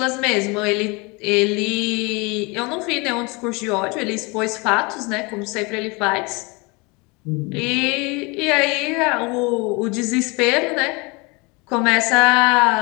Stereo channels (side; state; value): right; quieter; 27.7 dB